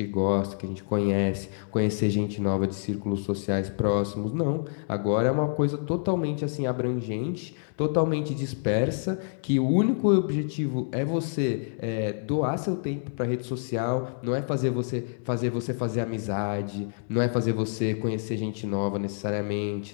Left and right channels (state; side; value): silent; right; digital silence